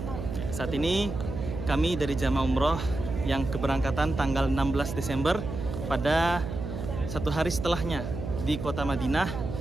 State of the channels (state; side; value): noise; right; hum, 6 dB below the sound